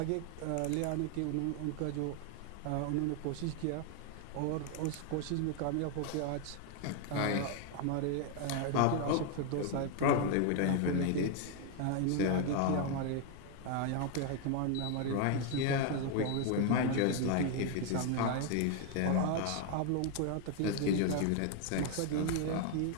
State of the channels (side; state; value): both; different; correlation 0.01